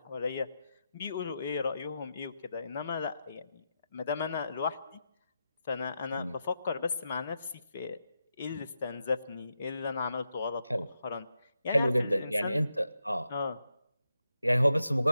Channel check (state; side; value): inverted; both; correlation -0.87